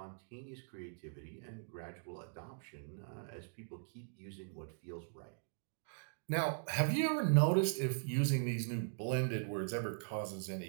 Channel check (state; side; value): silent; left; digital silence